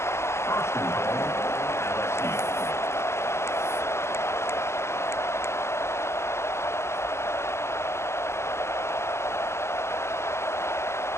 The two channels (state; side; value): late; right; 0.13 ms